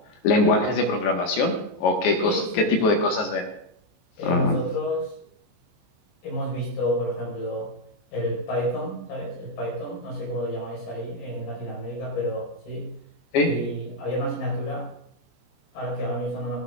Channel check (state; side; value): late; right; 14 ms